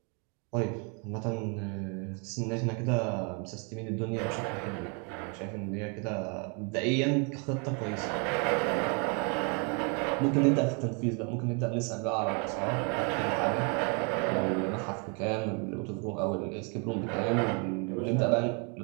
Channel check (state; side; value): quieter; left; 34.6 dB